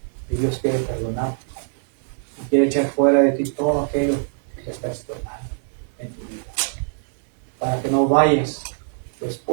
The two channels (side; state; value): left; silent; digital silence